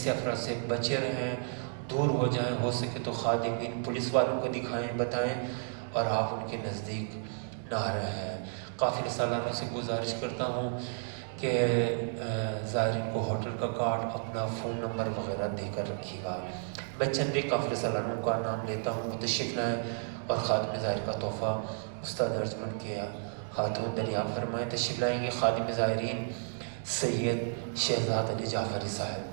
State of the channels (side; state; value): left; silent; digital silence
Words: افراد سے بچے رہیں، دور ہو جائیں، ہو سکے تو خادمین پولیس والوں کو دکھائیں، بتائیں، اور آپ ان کے نزدیک نہ رہیں۔ قافلہ سالاروں سے گزارش کرتا ہوں کہ زائرین کو ہوٹل کا کارڈ، اپنا فون نمبر وغیرہ دے کر رکھیے گا۔ میں چند ایک قافلہ سالاروں کا نام لیتا ہوں، تشریف لائیں اور خادم زائر کا تحفہ استاد ارجمنڈ کے ہاتھوں دریافت فرمائیں۔ تشریف لائیں گے خادم زائرین سید شہزاد علی جعفری صاحب،